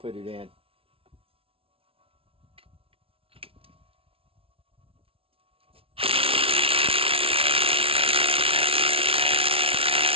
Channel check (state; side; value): late; left; 0.26 ms